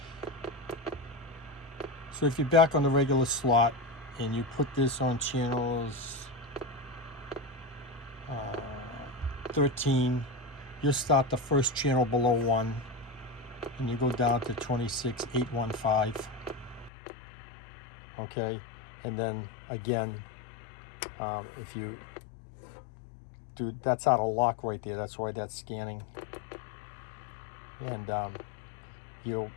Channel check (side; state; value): right; drops out; at 16.9 s